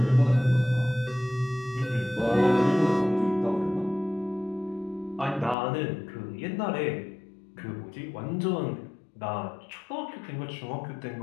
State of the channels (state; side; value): drops out; right; at 5.6 s